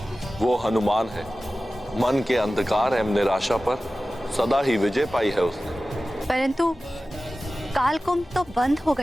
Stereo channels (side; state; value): both; normal; correlation 0.96